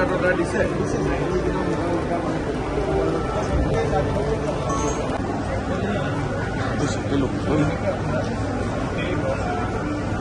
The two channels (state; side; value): identical; both; correlation 1.00